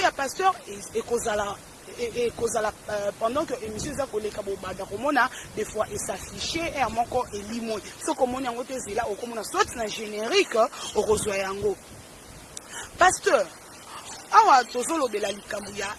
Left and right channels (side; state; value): both; identical; correlation 1.00